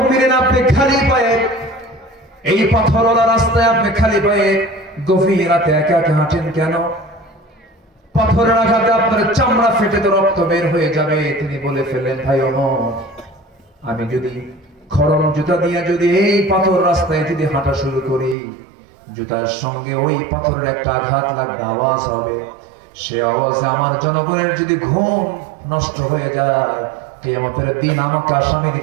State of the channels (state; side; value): drops out; left; at 18.4 s